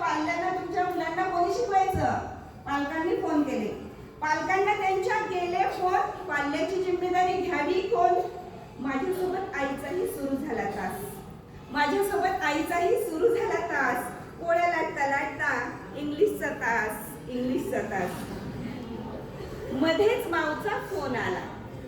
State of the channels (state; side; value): identical; both; correlation 1.00